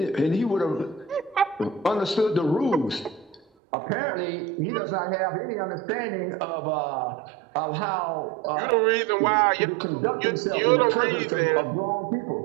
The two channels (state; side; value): drops out; left; at 3.4 s